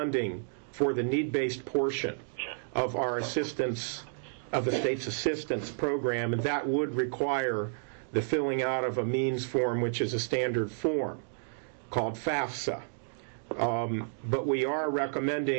for the need-based portion of our assistance, of the state's assistance program, and that would require the filling out of a means form, which is a standard form called FAFSA. But we are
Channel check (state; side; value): silent; left; digital silence